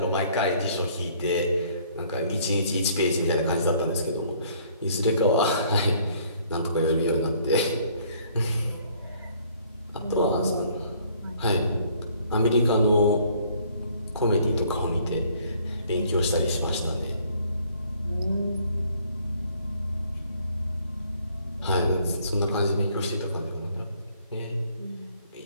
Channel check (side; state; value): both; inverted; correlation -0.61